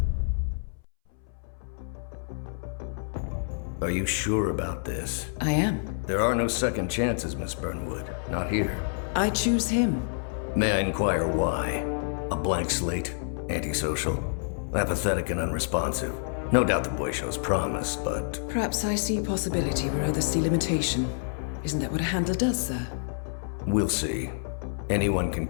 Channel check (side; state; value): right; silent; 59 dB below the other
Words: Are you sure about this? I am. There are no second chances, Miss Burnwood. Not here. I choose him. May I inquire why? A blank slate? Antisocial? Apathetic and unresponsive? No doubt the boy shows promise, but... Perhaps I see possibility where others see limitation. Isn't that what a handler does, sir? We'll see. Anyone can